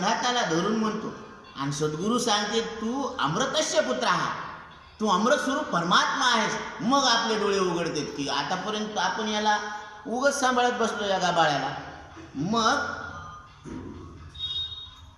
धरून म्हणतो आणि सद्गुरू सांगते तू अमृतस्य पुत्र आहात, तू अमृत स्वरूप परमात्मा आहेस. मग आपले डोळे उघडतात की आतापर्यंत आपण याला उगच सांभाळत बसलो या गाबाळ्याला. मग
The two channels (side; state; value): both; identical; correlation 1.00